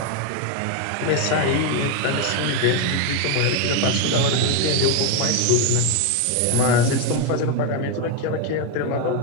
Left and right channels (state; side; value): different; both; correlation 0.01